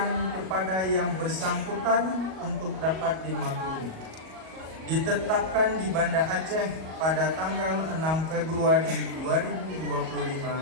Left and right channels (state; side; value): late; left; 37 ms